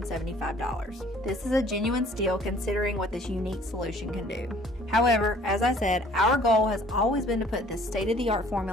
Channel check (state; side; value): normal; both; correlation 0.55